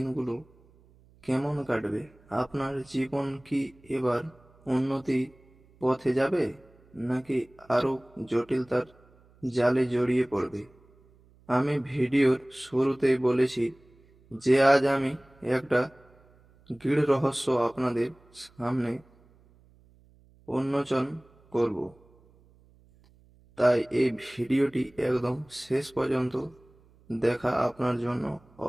কেমন কাটবে। আপনার জীবন কি এবার উন্নতি পথে যাবে, নাকি আরো জটিলতার জালে জড়িয়ে পড়বে? আমি ভিডিওর শুরুতেই বলেছি যে আজ আমি একটা গূঢ় রহস্য আপনাদের সামনে উন্মোচন করব। তাই এই ভিডিওটি একদম শেষ পর্যন্ত দেখা আপনার জন্য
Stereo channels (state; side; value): noise; right; hum, 29 dB below the sound